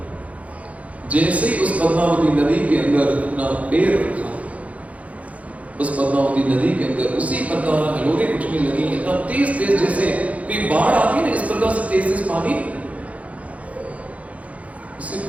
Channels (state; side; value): late; left; 0.067 ms